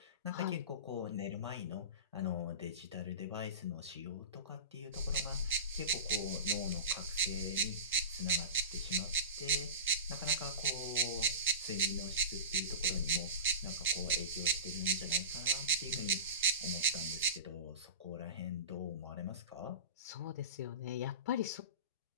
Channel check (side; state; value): both; inverted; correlation -0.30